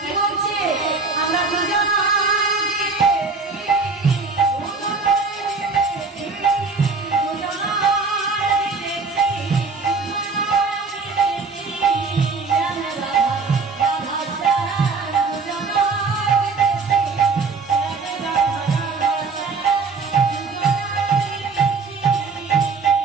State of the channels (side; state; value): left; quieter; 4.4 dB